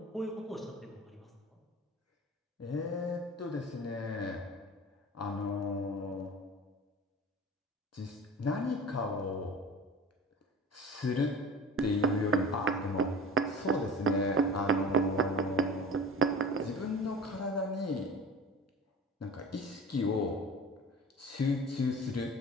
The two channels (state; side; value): normal; both; correlation 0.38